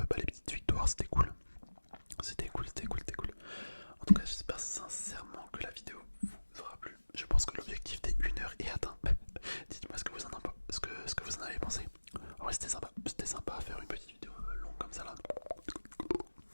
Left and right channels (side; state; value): both; inverted; correlation -1.00